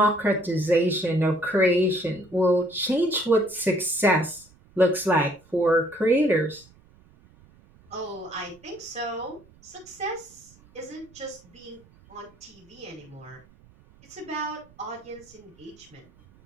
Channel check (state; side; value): noise; right; rumble, 27 dB below the sound